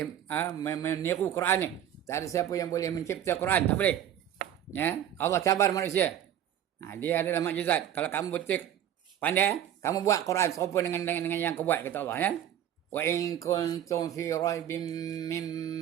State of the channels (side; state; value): left; quieter; 10.7 dB